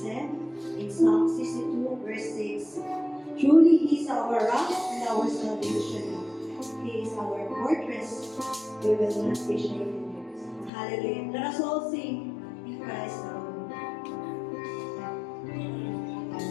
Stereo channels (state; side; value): drops out; right; at 10.7 s